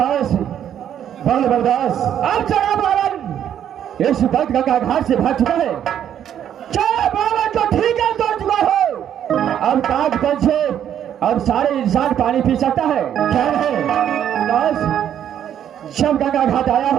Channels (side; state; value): left; quieter; 9.9 dB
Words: बलदास, अब चढ़ा बालन इस वक्त गंगा घाट से भाग चुका है। चढ़ा बालन तो ठीक है, तोड़ चुका हो। अब काग तल से अब सारे इंसान पानी पी सकता है। क्या है बलदास, जब गंगा घाट आया